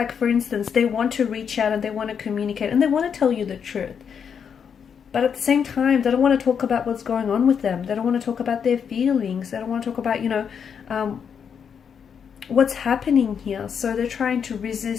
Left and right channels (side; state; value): right; quieter; 7.2 dB